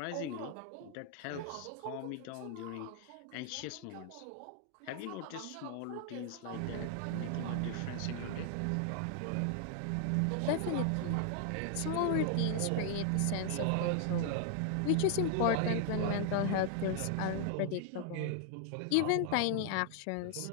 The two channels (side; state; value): both; different; correlation 0.00